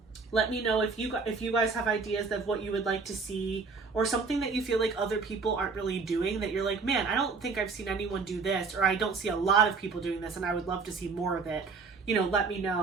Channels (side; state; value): left; quieter; 4.6 dB